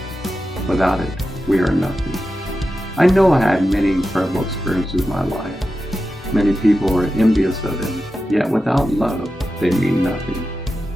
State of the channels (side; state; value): both; normal; correlation 0.91